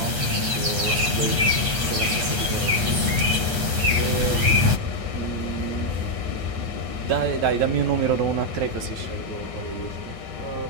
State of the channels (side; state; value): left; late; 8.4 ms